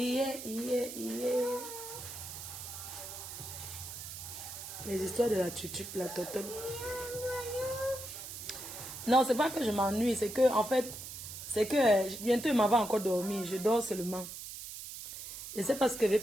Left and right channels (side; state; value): right; noise; hiss, 10 dB below the sound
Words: Les histoires de la tutu, la totole. Non, c'est pas que je m'ennuie, c'est que, en fait, c'est que bientôt il m'en va encore dormir. Je dors seulement. Je ne sais pas ce que je vais